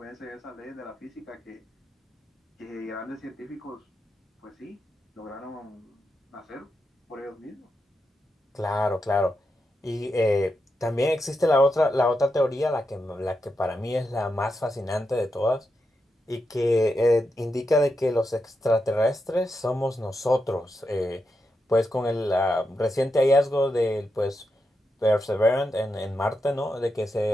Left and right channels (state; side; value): normal; both; correlation 0.86